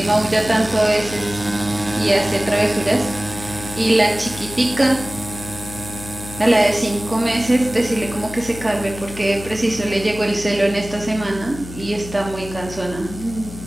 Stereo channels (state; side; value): noise; left; hum, 13 dB below the sound